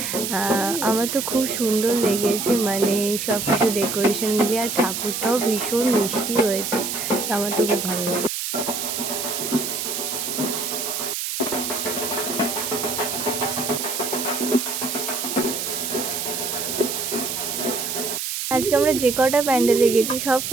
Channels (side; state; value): right; noise; hiss, 3 dB below the sound